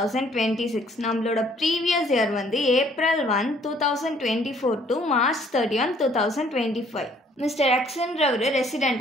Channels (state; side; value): normal; both; correlation 0.61